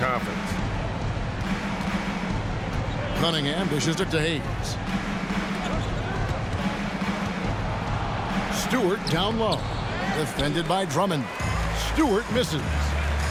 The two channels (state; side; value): identical; both; correlation 1.00